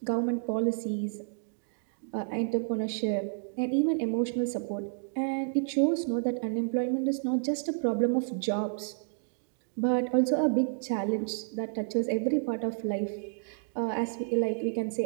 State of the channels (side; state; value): left; silent; digital silence